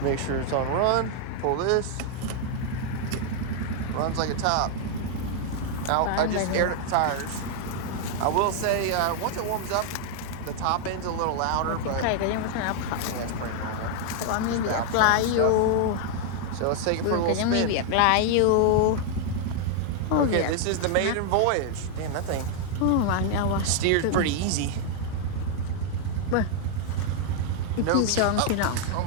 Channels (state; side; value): different; both; correlation 0.00